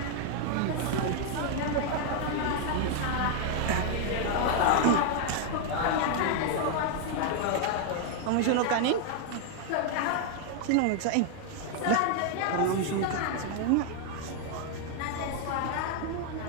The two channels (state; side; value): different; both; correlation 0.00